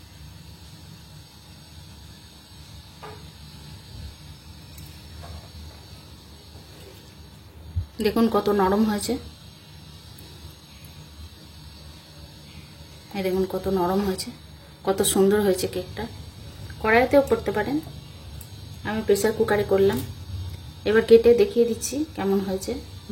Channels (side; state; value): both; identical; correlation 1.00